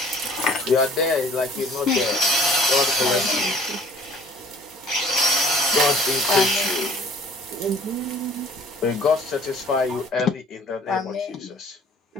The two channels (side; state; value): both; normal; correlation 0.53